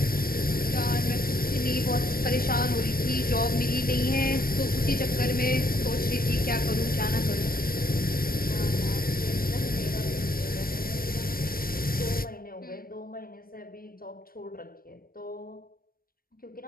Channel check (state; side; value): late; right; 0.42 ms